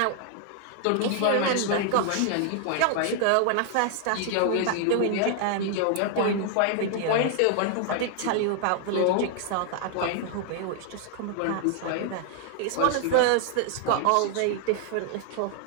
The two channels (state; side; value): different; both; correlation 0.00